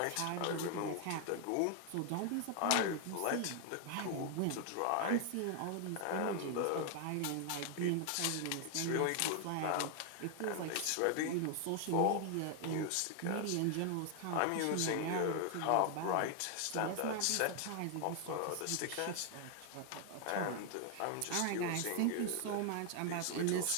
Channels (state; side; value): different; both; correlation 0.00